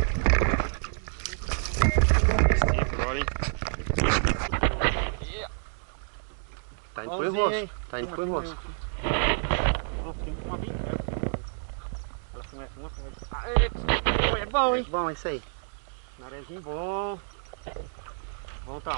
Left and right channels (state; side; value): silent; left; digital silence